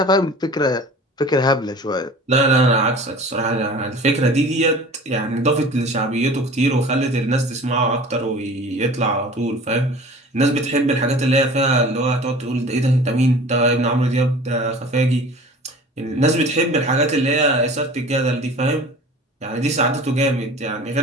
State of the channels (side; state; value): both; normal; correlation 0.42